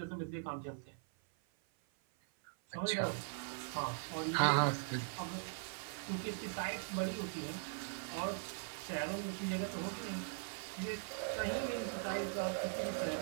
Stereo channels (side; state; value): left; silent; 51 dB below the other